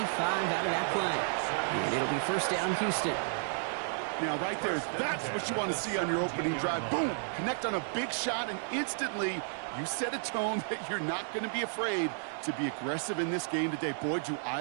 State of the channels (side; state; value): left; silent; digital silence